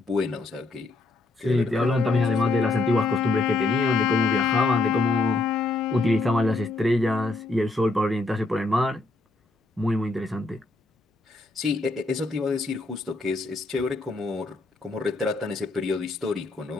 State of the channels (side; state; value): right; quieter; 3.2 dB